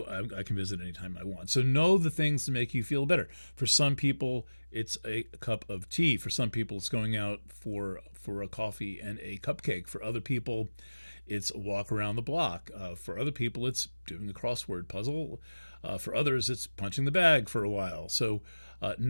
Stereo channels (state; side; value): inverted; both; correlation -1.00